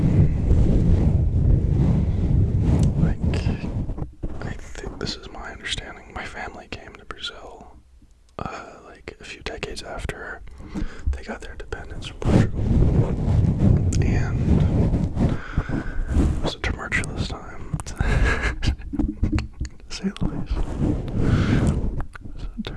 I think this is my understanding. My family came to Brazil, like a few decades after they got their independence from Portugal, and it was a tumultuous time, to say the least. It was a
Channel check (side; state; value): both; identical; correlation 1.00